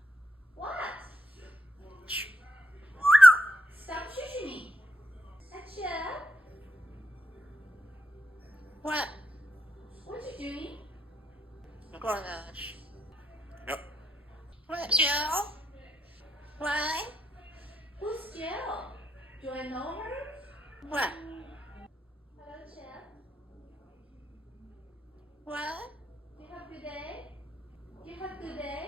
What? Stop shushing me. Achoo. What? What you doing? I'm going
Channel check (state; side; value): normal; both; correlation 0.80